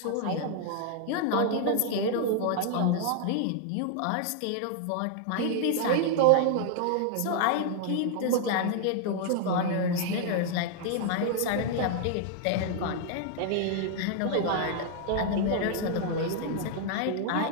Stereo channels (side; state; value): both; different; correlation 0.00